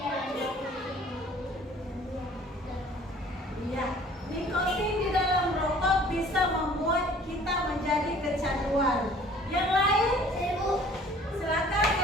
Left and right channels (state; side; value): normal; both; correlation 0.52